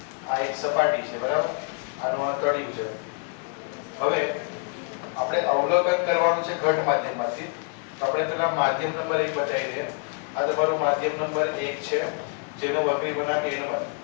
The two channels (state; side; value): quieter; right; 38.3 dB